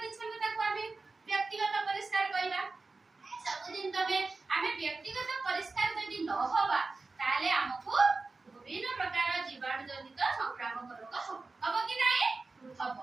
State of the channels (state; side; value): quieter; left; 3.7 dB